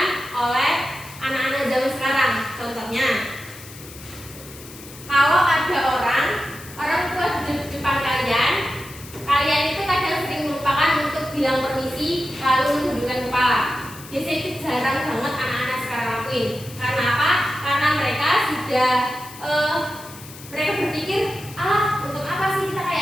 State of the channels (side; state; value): left; noise; hiss, 17 dB below the sound